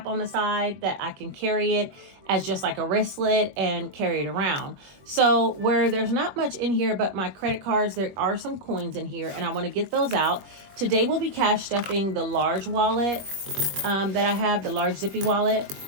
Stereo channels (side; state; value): left; late; 21 ms